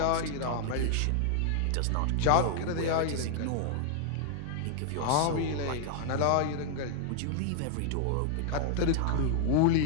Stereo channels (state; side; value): different; both; correlation 0.00